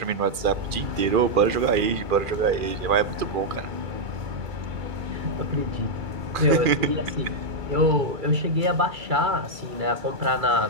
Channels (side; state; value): left; late; 2.4 ms